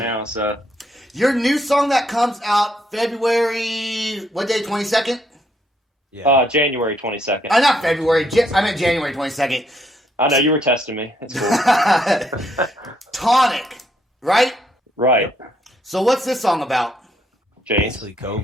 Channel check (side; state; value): both; normal; correlation 0.72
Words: now. So your new song that comes out February, what day? 22nd? Yeah, January 22nd. Not February. I meant January 22nd. I know you were testing me. It's cool. Tonic, right? Right. So what's this song about? James? Basically